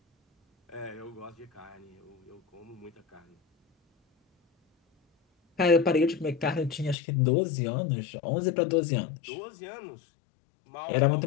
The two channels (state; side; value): drops out; right; at 7.0 s